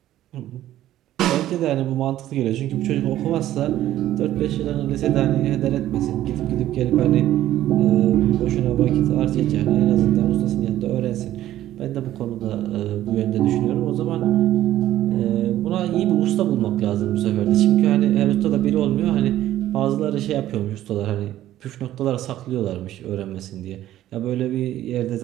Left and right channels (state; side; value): quieter; left; 13.4 dB